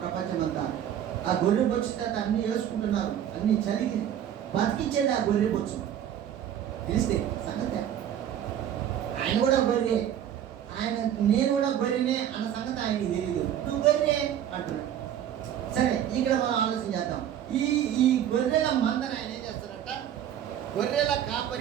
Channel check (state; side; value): quieter; left; 10.3 dB